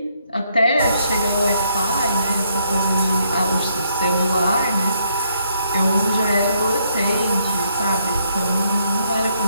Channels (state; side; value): inverted; both; correlation -0.73